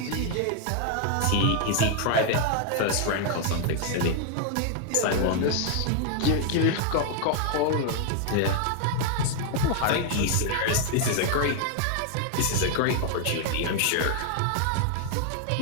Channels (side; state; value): both; different; correlation 0.00